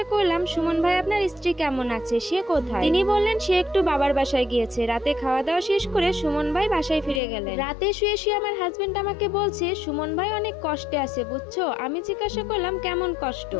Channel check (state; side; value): drops out; right; at 7.2 s